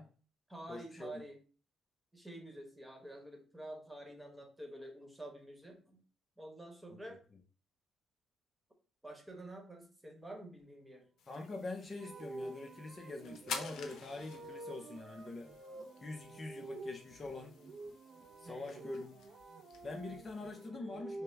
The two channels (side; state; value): both; normal; correlation 0.82